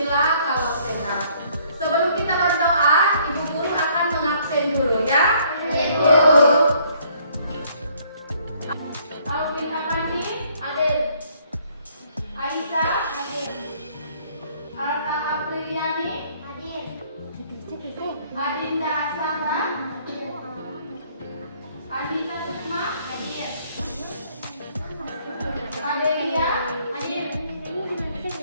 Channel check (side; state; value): both; inverted; correlation -0.63